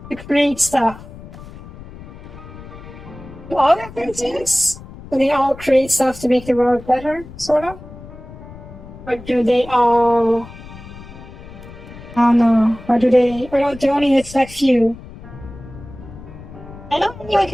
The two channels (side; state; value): left; noise; rumble, 16 dB below the sound